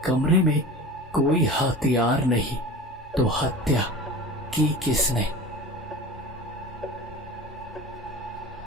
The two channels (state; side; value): normal; both; correlation 0.35